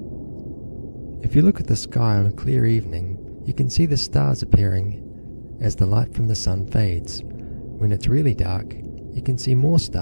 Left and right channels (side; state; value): both; inverted; correlation -1.00